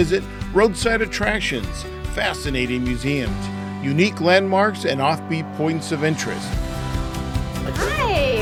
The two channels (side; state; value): both; identical; correlation 1.00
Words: roadside attractions, fascinating museums, unique landmarks, and offbeat points of interest. Hi,